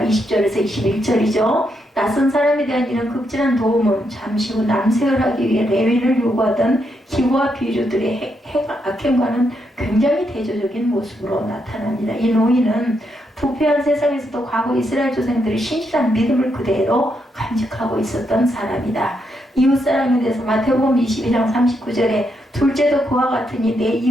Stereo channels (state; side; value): normal; both; correlation 0.80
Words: 20절에서 21절이죠. 낯선 사람에 대한 이런 극진한 도움은 잠시 후 남색을 하기 위해 레위인을 요구하던 기부와 비류들의 악행과는 굉장히 대조적인 모습으로 나타납니다. 이 노인은 부패한 세상에서도 과거 이스라엘 조상들이 신실한 믿음을 그대로 간직하고 있었던 사람이다. 이웃사랑에 대해서 마태복음 22장 39절에 둘째도 그와 같으니 내